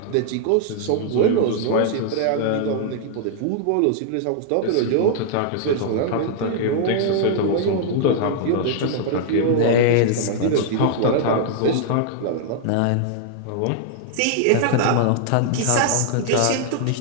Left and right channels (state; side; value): different; both; correlation -0.01